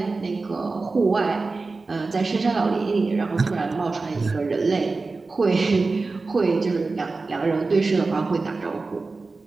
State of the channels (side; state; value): left; quieter; 3.8 dB